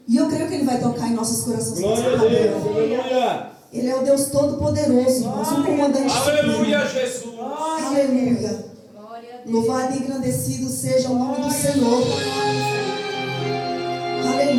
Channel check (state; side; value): identical; both; correlation 1.00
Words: e eu creio que Ele vai tocar em nossos corações. Glória a Deus, aleluia. Ele é o Deus todo-poderoso, irmãos, o comandante Aleluia, supremo. Jesus. Aleluia. Louvado e engrandecido seja o nome do Senhor.